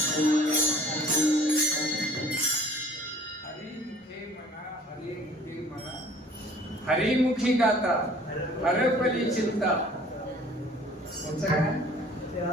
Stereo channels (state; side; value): normal; both; correlation 0.52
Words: हरिमुखी गाता हरपली चिंता.